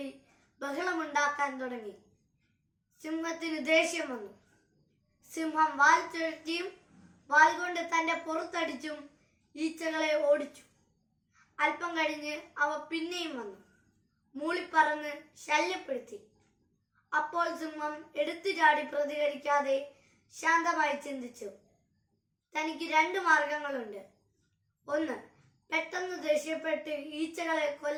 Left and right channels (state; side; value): identical; both; correlation 1.00